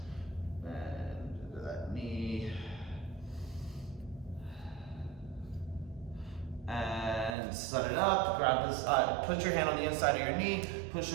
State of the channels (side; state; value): left; drops out; at 7.4 s